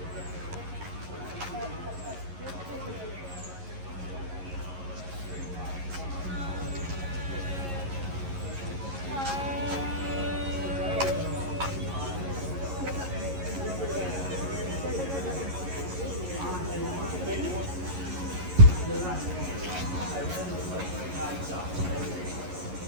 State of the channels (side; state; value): left; late; 11 ms